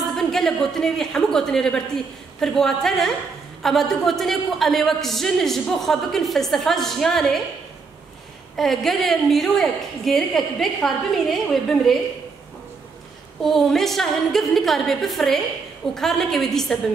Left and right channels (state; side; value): quieter; left; 4.7 dB